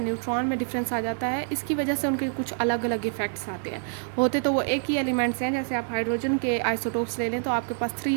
में डिफरेंस आ जाता है, इसकी वजह से उनके कुछ अलग अलग इफ़ेक्ट्स आते हैं। होते तो वो एक ही एलिमेंट्स हैं, जैसे आप हाइड्रोजन के आइसोटोप्स ले लें तो आपके पास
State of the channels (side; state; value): left; silent; digital silence